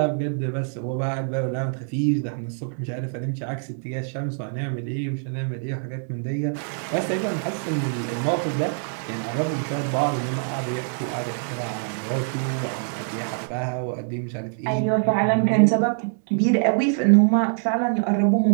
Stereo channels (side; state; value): left; silent; 62 dB below the other